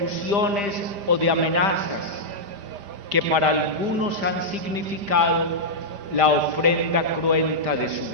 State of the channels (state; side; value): late; left; 5.0 ms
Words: o de amenazas que para algunos han significado la ofrenda cruenta de su